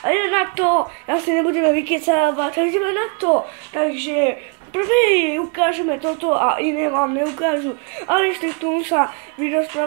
ide na to, ja si nebudeme vykecávať, a ideme na to. Takže prvý ukážeme toto a iné vám neukážu. Ale ešte k tomu sa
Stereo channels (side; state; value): left; quieter; 37.3 dB